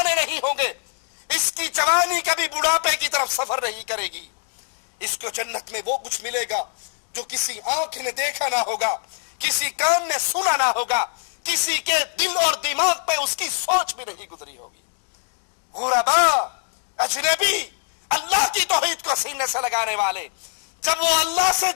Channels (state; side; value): silent; right; 61 dB below the other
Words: نہیں ہوں گے، اس کی جوانی کبھی بڑھاپے کی طرف سفر نہیں کرے گی. اس کو جنت میں وہ کچھ ملے گا جو کسی آنکھ نے دیکھا نہ ہوگا, کسی کان نے سنا نہ ہوگا, کسی کے دل اور دماغ پہ اس کی سوچ بھی نہیں گزری ہوگی. غربا, اجنبی, اللہ کی توحید کو سینے سے لگانے والے, جب وہ اللہ سے